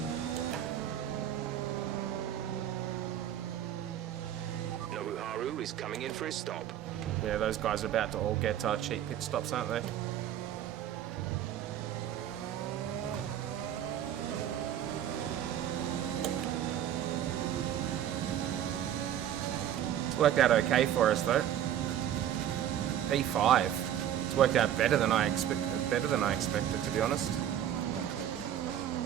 Haru is coming in for his stop. Yeah, those guys are about to all get cheap pit stops, aren't they? It's worked out okay for us though. P5. It's worked out better than I expected, to be honest.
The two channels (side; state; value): left; quieter; 10.7 dB